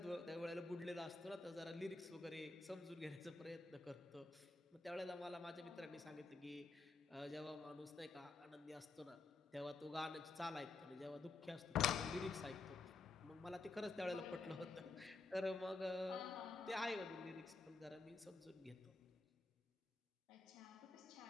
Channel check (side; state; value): right; quieter; 3.7 dB